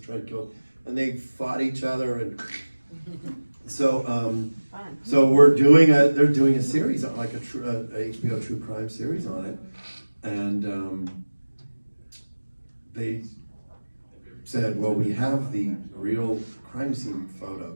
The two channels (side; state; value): both; inverted; correlation -1.00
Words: try to kill, and they fought each other, and so they're doing a series on, like a HBO true crime series on it, and they said, well, we have the real crime scene